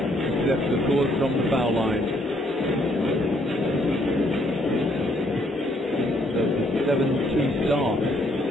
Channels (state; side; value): normal; both; correlation 0.69